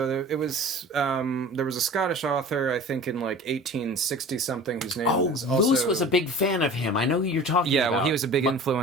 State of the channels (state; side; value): normal; both; correlation 0.40